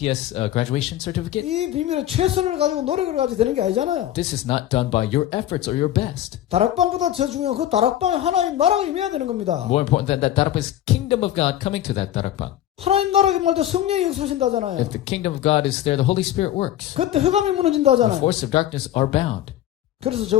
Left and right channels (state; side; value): quieter; right; 12.5 dB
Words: graduation certificate? 이 비밀은 최선을 가지고 노력을 가지고 되는 게 아니잖아요. This is not done by your efforts or your best. 다락방보다 더 중요한 그 다락방에 하나님 나라가 임해야 되는 겁니다. More important than that, darakbang is kingdom of God coming to that darakbang. 하나님 나라가 임할 때 성령이 역사하신다잖아요. If the kingdom of God is there, the Holy Spirit works. 그때 흑암이 The 무너진다잖아요. forces of darkness are bound. 그래서